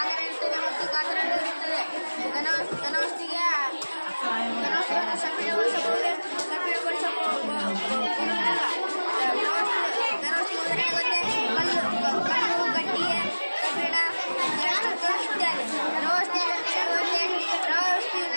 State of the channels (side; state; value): both; inverted; correlation -1.00